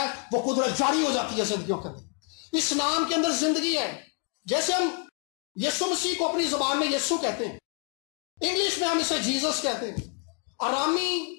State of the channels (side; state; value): right; quieter; 38.9 dB